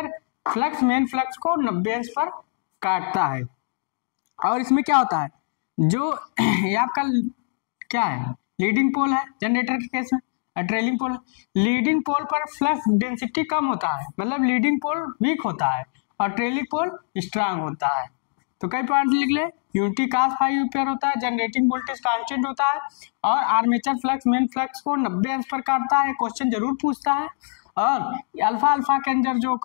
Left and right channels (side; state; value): right; silent; 63 dB below the other